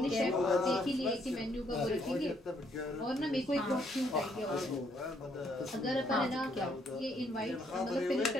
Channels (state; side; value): normal; both; correlation 0.70